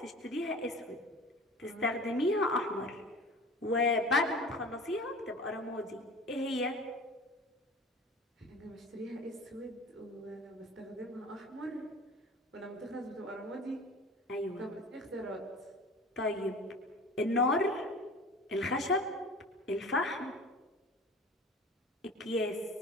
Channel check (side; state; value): both; normal; correlation 0.39